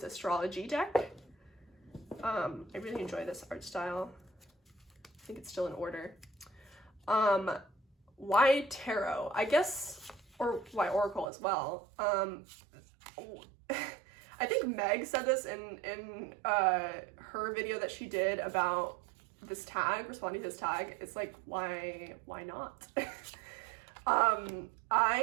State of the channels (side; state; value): left; drops out; at 11.3 s